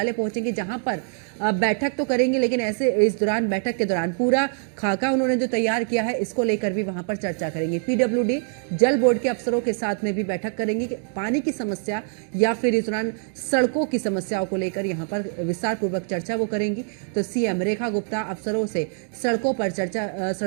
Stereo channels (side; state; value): left; silent; 58 dB below the other